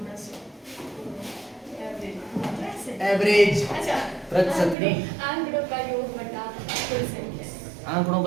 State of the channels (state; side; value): drops out; left; at 4.8 s